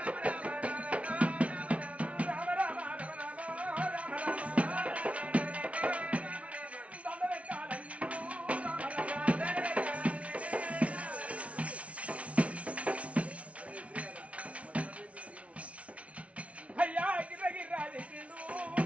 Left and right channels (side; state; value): left; late; 0.064 ms